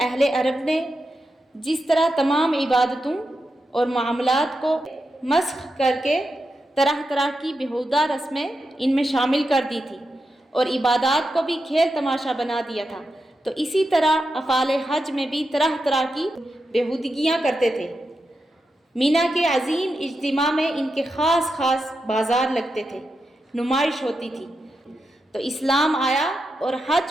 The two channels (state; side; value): normal; both; correlation 0.87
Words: اہل عرب نے جس طرح تمام عبادتوں اور معاملات کو مسخ کر کے طرح طرح کی بیہودہ رسمیں ان میں شامل کر دی تھی اور عبادات کو بھی کھیل تماشا بنا دیا تھا، تو اسی طرح افعال حج میں بھی طرح طرح کی بیہودگیاں کرتے تھے۔ مینا کے عظیم اجتماع میں ان کے خاص خاص بازار لگتے تھے، نمائش ہوتی تھی۔ تو اسلام آیا اور